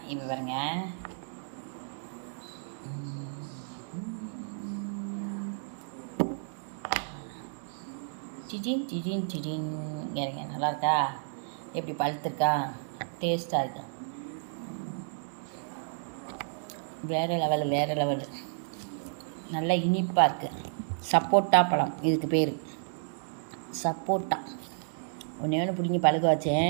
இப்போ பாருங்க, சிஜின் சிஜின் சிஜின் இறங்க. நல்லா இருக்கா? எப்படி பழுத்துருக்கா? டேஸ்ட்டாக இருக்கா? வேறு லெவலு நல்லா இனிப்பாக இருக்குது. சப்போட்டா பழம் இதுக்கு பேர், சப்போட்டா. ஒன்று பிடிங்கி பழுக்க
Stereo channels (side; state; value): left; silent; digital silence